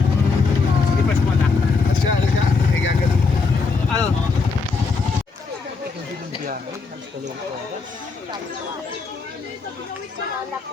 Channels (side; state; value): right; quieter; 4.4 dB